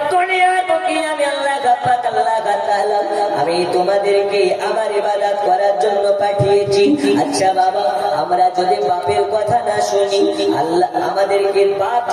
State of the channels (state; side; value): identical; both; correlation 1.00